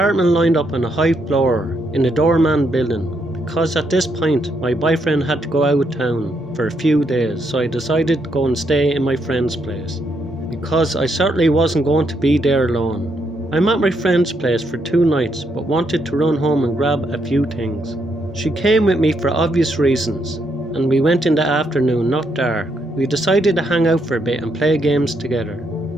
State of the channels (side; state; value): both; normal; correlation 0.77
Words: lined up on a high floor in the doorman building, because at this point my boyfriend had to go out of town for a few days, so I decided to go and stay in my friend's place, because I certainly wasn't going to be there alone. I'm at my friend's place for 2 nights, but wanted to run home and grab a few things. She came with me for obvious reasons, and we went in the afternoon, not dark. We decided to hang out for a bit and play games together.